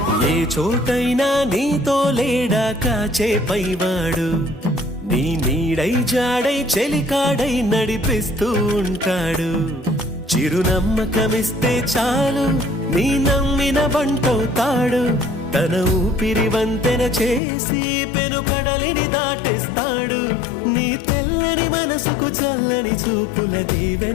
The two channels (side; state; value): right; drops out; at 17.4 s